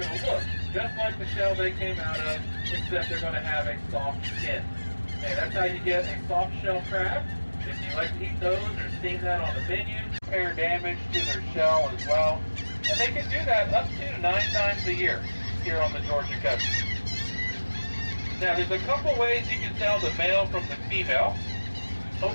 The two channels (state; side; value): inverted; both; correlation -1.00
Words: to look just like the shell they came out of, except they're going to have a soft skin. And that's how you get a soft shell crab. If you like to eat those or seen that on the menu, repair damage to their shell as well. And they can do that up to 9 times a year here on the Georgia coast. Now, there's a couple ways you can tell the male from the female.